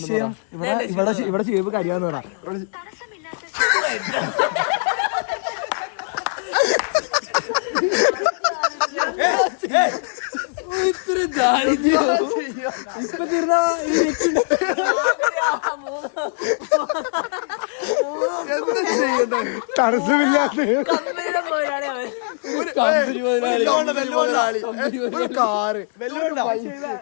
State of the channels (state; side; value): silent; right; digital silence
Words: ഇവിടെ ഷേബ് കരിയാന്ന് പറ. ഇത്ര ദാരിദ്ര്യം ഇപ്പൊ തീർന്ന എന്താ ചെയ്യണ്ട? കാറ്